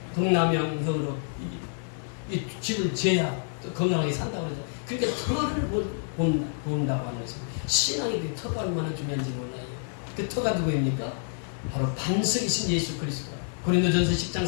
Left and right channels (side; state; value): right; silent; 57 dB below the other